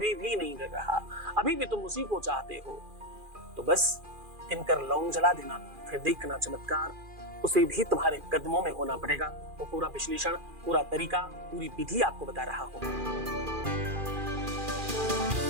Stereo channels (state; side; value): late; left; 2.4 ms